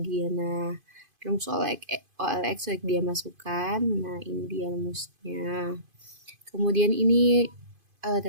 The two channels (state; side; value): late; left; 2.5 ms